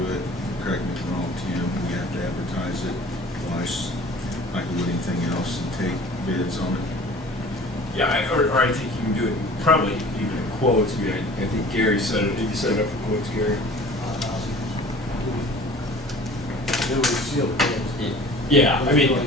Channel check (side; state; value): both; normal; correlation 0.45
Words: it, correct me if I'm wrong, Tim, we have to advertise it twice, like we would anything else, and take bids on it. yeah, or I think you can do it probably even in quotes. I mean, I think Gary said it. Did you set it up for quotes, Gary? It was sealed bids. Yeah, I mean, Doesn't